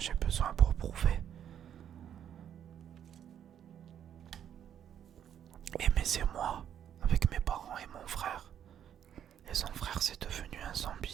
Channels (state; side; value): quieter; left; 9.5 dB